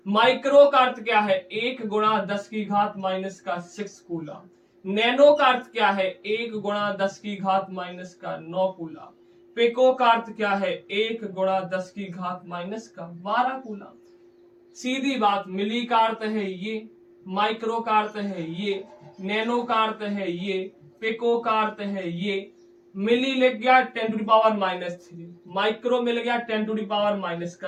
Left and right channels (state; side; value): identical; both; correlation 1.00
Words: माइक्रो का अर्थ क्या है 1 गुणा 10 की घात माइनस का 6 कूलम। नैनो का अर्थ क्या है 1 गुणा 10 की घात माइनस का 9 कूलम। पिको का अर्थ क्या है 1 गुणा 10 की घात माइनस का 12 कूलम। सीधी बात, मिली का अर्थ है ये, माइक्रो का अर्थ है ये, नैनो का अर्थ है ये, पिको का अर्थ है ये। मिली लिख गया 10 टू द पावर -3, माइक्रो मिल गया 10 टू द पावर